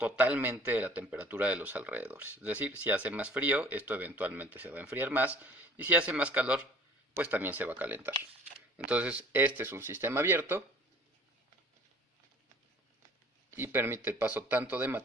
de la temperatura de los alrededores. Es decir, si hace más frío, esto eventualmente se va a enfriar más, y si hace más calor, pues también se va a calentar. Entonces, este es un sistema abierto y permite el paso tanto de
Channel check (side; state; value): both; normal; correlation 0.50